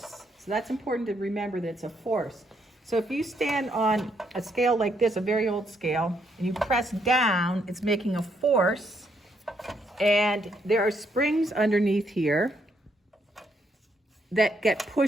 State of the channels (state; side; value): normal; both; correlation 0.74